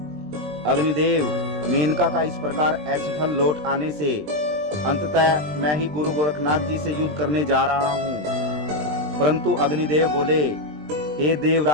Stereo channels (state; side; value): late; left; 20 ms